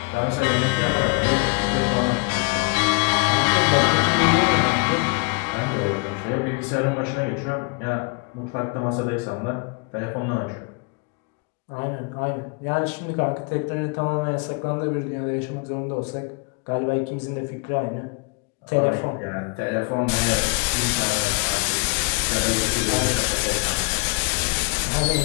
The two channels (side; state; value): right; quieter; 30.6 dB